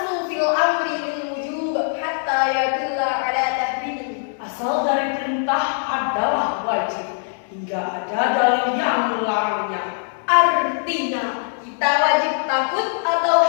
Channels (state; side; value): silent; right; digital silence